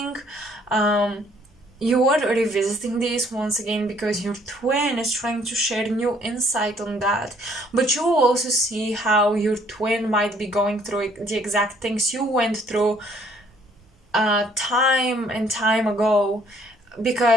You are revisiting this once again because your twin is trying to share new insight on that. But you will also see how your twin might be going through the exact things you went through time and time ago,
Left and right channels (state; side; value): normal; both; correlation 0.63